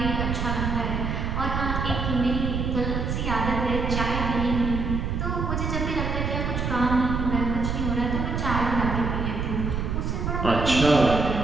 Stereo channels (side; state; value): right; noise; rumble, 1 dB below the sound